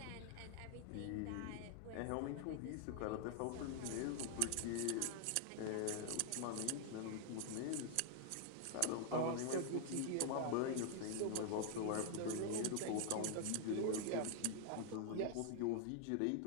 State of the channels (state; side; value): different; both; correlation 0.00